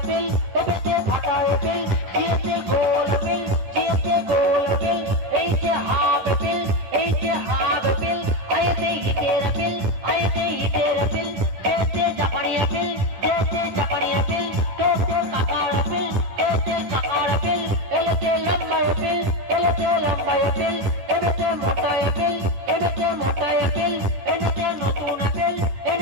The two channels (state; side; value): late; left; 10 ms